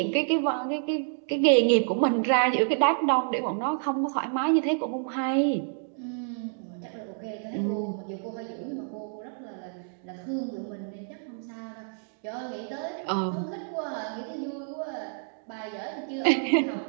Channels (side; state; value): left; silent; digital silence